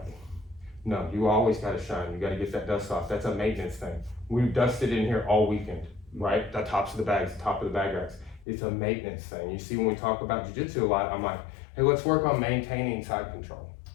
No, you always gotta shine. You gotta get that dust off. That's a maintenance thing. We've dusted in here all weekend, right? The tops of the bags, the top of the bag racks. It's a maintenance thing. You see, when we talk about jiu-jitsu a lot, I'm like, hey, let's work on maintaining side control.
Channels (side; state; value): right; drops out; at 8.5 s